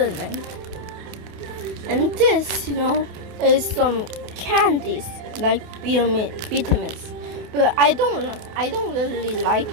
And this, is some candies like vitamins. But I don't really like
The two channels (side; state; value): left; late; 28 ms